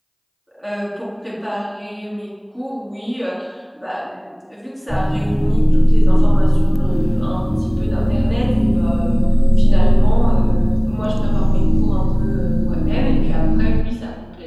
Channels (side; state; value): both; identical; correlation 1.00